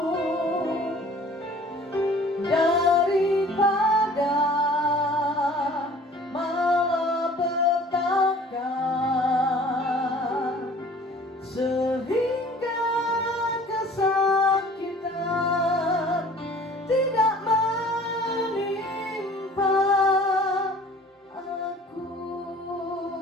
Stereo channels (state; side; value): normal; both; correlation 0.49